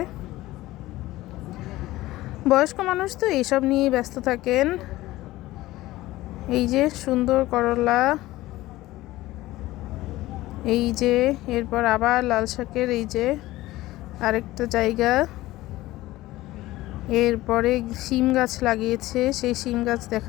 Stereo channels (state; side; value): quieter; right; 17.3 dB